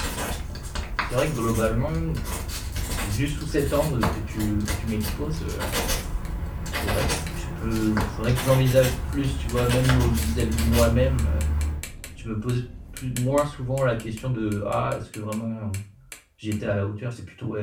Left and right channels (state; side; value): identical; both; correlation 1.00